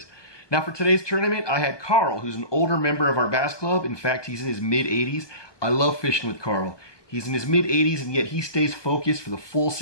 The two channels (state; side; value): late; right; 1.2 ms